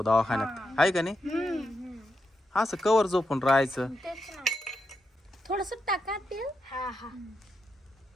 दवाखान्यात, आहे का नाही? असं कवर झोपून राहायचं. तेच ना. थोडस टाका तेल. हा हा.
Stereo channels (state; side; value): normal; both; correlation 0.84